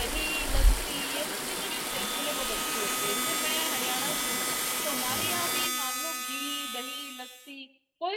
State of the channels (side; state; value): both; identical; correlation 1.00